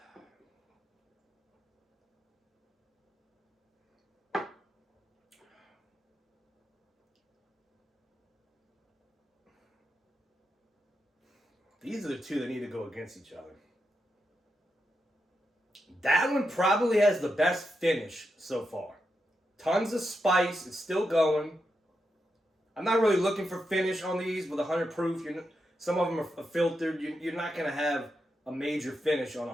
These are the two that need to go against each other. That one probably has the best finish so far. Tons of spice. It's still going. I'm not really looking for finish on these with 100 proof. Some of them are filtered. You're not going to have a major finish on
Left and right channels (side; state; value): both; normal; correlation 0.86